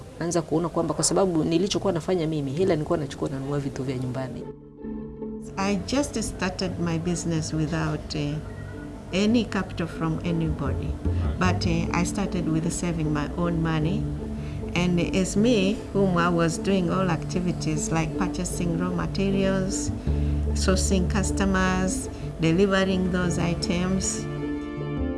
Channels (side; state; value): both; identical; correlation 1.00